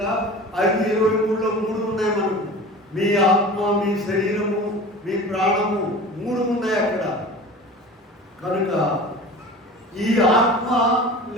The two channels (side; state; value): both; normal; correlation 0.37